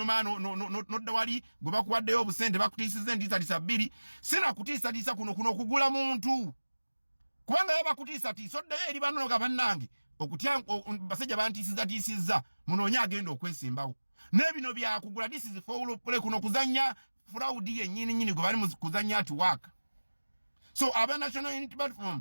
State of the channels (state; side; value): inverted; both; correlation -1.00